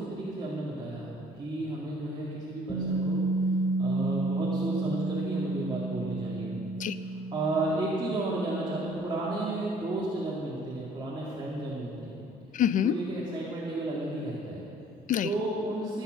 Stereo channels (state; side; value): normal; both; correlation 0.56